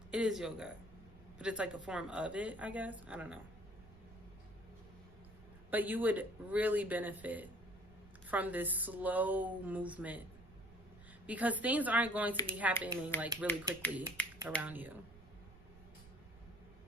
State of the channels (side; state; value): right; noise; rumble, 21 dB below the sound